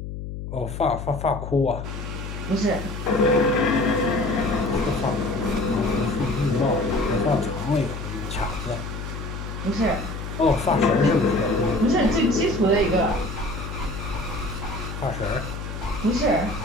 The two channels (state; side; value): noise; left; hum, 7 dB below the sound